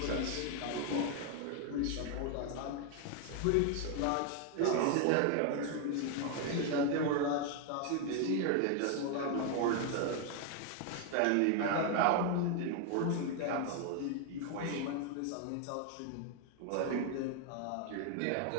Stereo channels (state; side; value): different; both; correlation 0.01